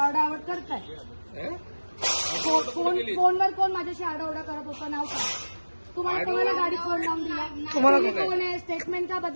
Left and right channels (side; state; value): both; inverted; correlation -1.00